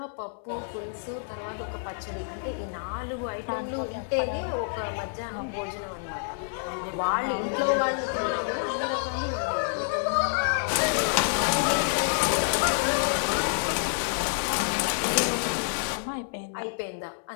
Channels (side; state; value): right; silent; 59 dB below the other